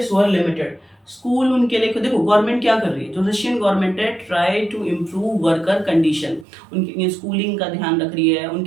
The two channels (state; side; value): drops out; left; at 6.5 s